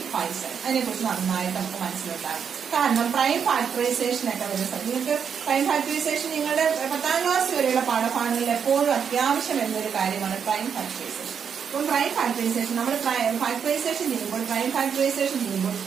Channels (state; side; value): quieter; left; 7.2 dB